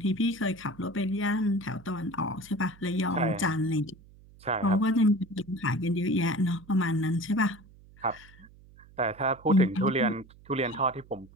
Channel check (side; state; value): right; noise; hum, 24 dB below the sound